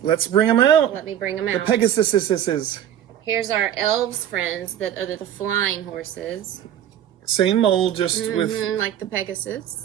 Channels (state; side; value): quieter; left; 10.5 dB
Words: Let's bring them out. let me bring them The out. Pegasuses. Here's our elves friends that are the flying horses. Same mold, just Mhm, like the